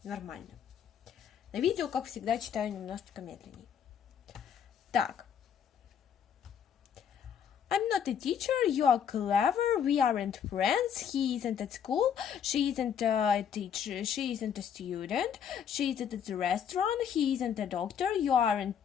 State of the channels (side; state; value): right; quieter; 8.1 dB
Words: Нормально. На видео, как всегда, читаю немножечко медленнее. Так. I'm not a teacher, you are clever, we aren't friends, he isn't at school, she isn't a teacher, she isn't a student, she isn't at the restaurant, he isn't a doctor, you